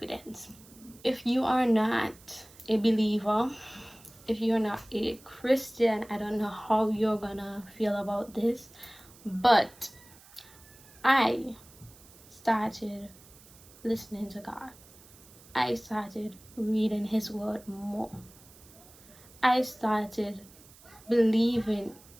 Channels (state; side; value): noise; right; hiss, 23 dB below the sound